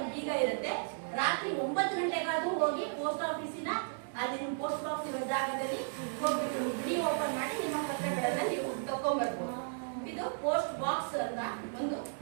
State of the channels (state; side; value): silent; left; digital silence